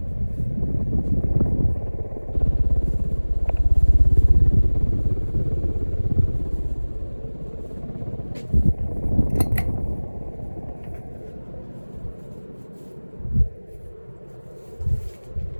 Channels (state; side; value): inverted; both; correlation -1.00